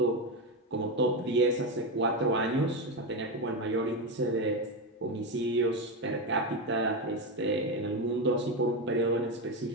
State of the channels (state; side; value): normal; both; correlation 0.12